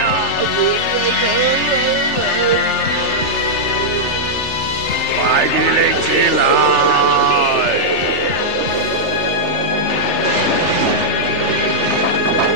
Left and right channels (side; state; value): right; late; 3.3 ms